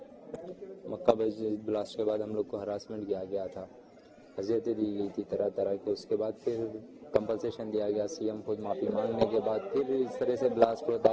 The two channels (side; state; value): both; identical; correlation 1.00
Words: मक्का मस्जिद ब्लास्ट के बाद हम लोग को हरासमेंट किया गया था, अजियतें दी गई थी तरह तरह के। उसके बाद फिर कंपलसेशन दिया गया, सीएम खुद माफ़ी मांगने के बाद फिर इस तरह से ब्लास्ट होता